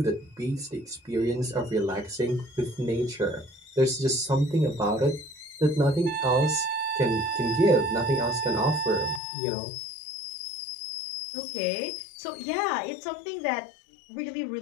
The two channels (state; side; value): drops out; right; at 9.2 s